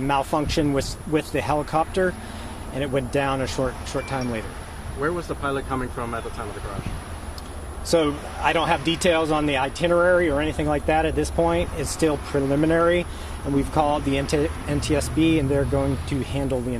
with the helicopter, and it went down a short time later. Where was the pilot coming from at the time of the crash? So I don't have details on the itinerary or anything like that at this point. It's still preliminary, and we've called the NTSB, and they're going to handle the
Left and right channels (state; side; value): identical; both; correlation 1.00